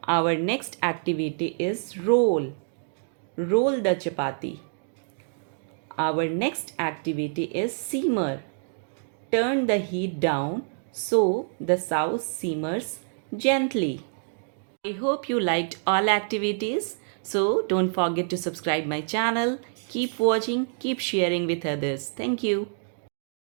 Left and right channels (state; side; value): silent; left; digital silence